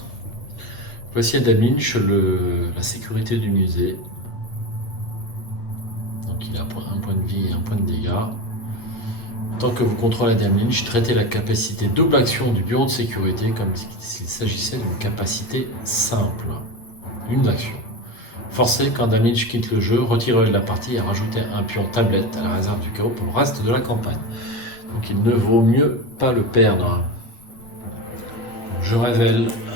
Voici Adam Lynch, la sécurité du musée. Donc il a un point de vie et un point de dégâts. Tant que vous contrôlez Adam Lynch, traitez la capacité double action du bureau de sécurité comme s'il s'agissait d'une capacité simple. Une action. Forcez quand Adam Lynch quitte le jeu, retirez-le de la partie et rajoutez un pion tablette à la réserve du chaos pour le reste de la campagne. Donc il ne vaut mieux pas le perdre. Je révèle.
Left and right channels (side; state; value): right; late; 8.5 ms